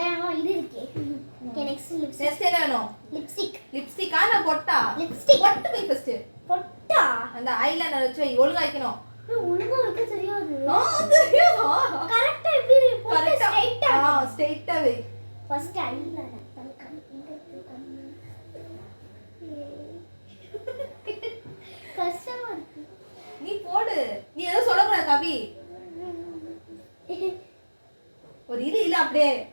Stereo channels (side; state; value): both; inverted; correlation -1.00